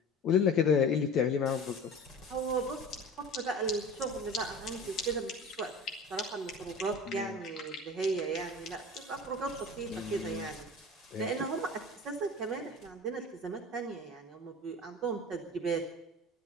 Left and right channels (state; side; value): normal; both; correlation 0.37